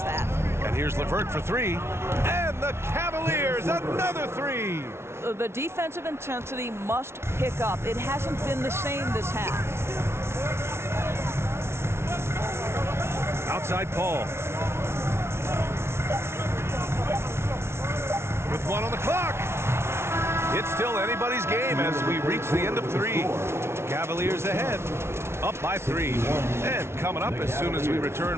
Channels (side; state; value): left; late; 0.12 ms